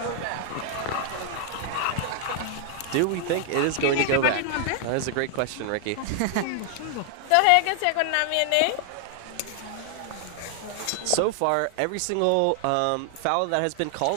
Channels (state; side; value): different; both; correlation 0.00